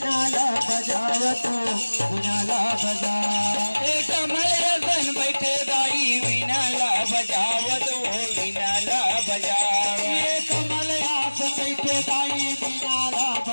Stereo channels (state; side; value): inverted; both; correlation -1.00